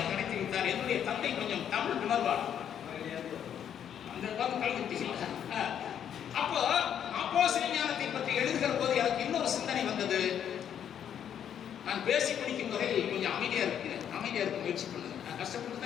நடத்தி வைத்தார். என்னுடைய தந்தை கொஞ்சம் தமிழ் உணர்வார். அந்த கல்வி அப்போ அப்போ சிவஞானத்தை பற்றி எழுதுகிற போது எனக்கு இன்னொரு சிந்தனை வந்தது. நான் பேசி பிடிக்கும் வரை கொஞ்சம் அமைதியா இருக்க முயற்சி பண்ணுங்க. நான் கஷ்டப்பட்டு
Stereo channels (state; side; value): quieter; right; 9.2 dB